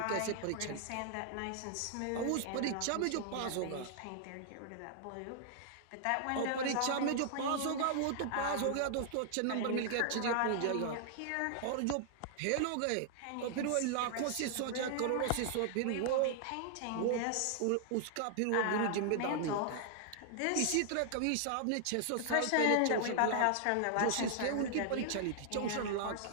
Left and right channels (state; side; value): different; both; correlation -0.01